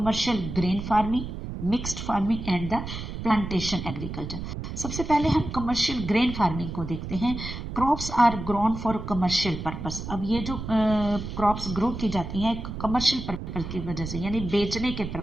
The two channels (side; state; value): right; noise; rumble, 7 dB below the sound